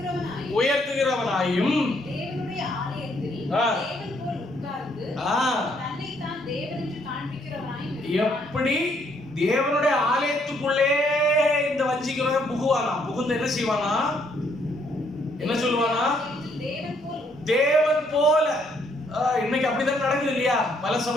உயர்த்துகிறவனாயும் எப்படி தேவனுடைய ஆலயத்துக்குள்ளே இந்த வஞ்சிக்கிறவன் புகுவானா? புகுந்து என்ன செய்வானா? என்ன சொல்லுவானா? தேவன் போல. இன்னைக்கு அப்படிதான் நடக்குது இல்லையா? பல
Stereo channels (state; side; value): normal; both; correlation 0.69